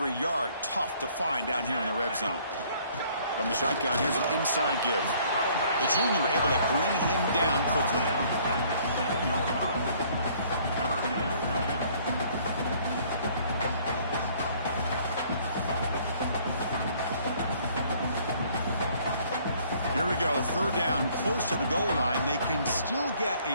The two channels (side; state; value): both; inverted; correlation -0.60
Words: yard tough to find down here in the red zone. From the shotgun, here's an inside give. The junior able to bring him down quickly. Here we go, 3rd down, close to the goal line. They can still get